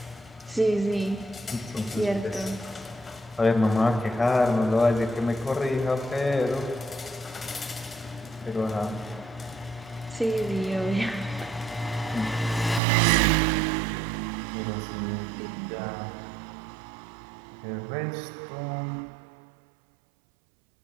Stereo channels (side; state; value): left; drops out; at 12.8 s